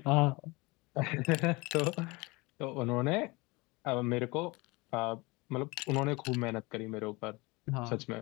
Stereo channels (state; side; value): quieter; right; 24.6 dB